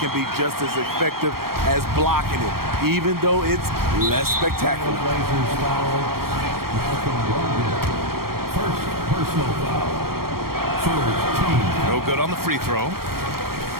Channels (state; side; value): late; left; 0.94 ms